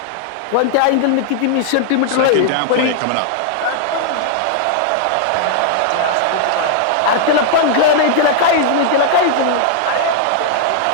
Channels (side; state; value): both; different; correlation -0.01